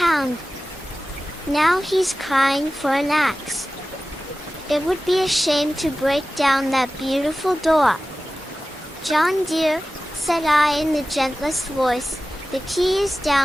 Now he's crying for an axe. It would be a shame to break down that beautiful door. John dear, said I in the gentlest voice, the key is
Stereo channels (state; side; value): normal; both; correlation 0.95